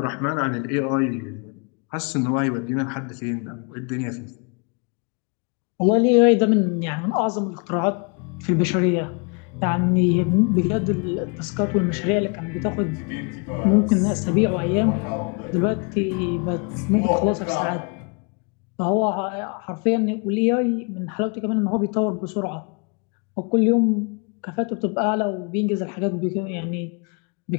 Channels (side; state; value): right; quieter; 35.1 dB